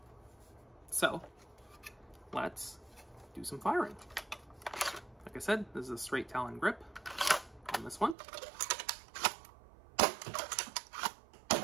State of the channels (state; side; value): drops out; left; at 8.2 s